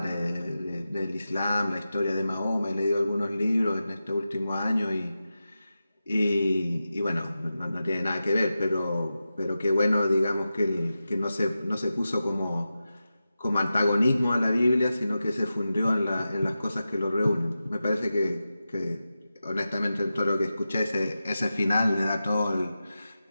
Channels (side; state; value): both; inverted; correlation -0.92